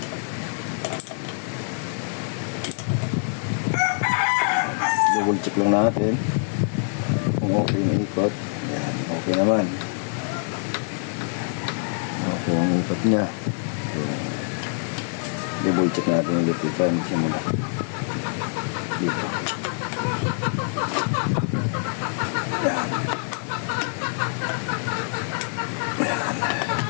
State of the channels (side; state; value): right; silent; 62 dB below the other